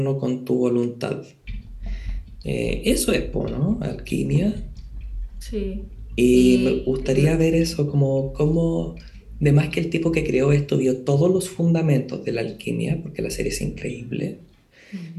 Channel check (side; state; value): both; identical; correlation 1.00